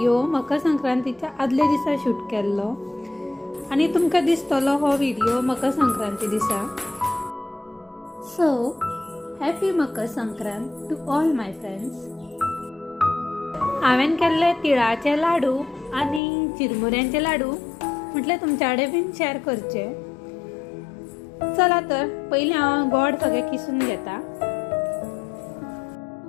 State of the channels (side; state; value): right; drops out; at 16.2 s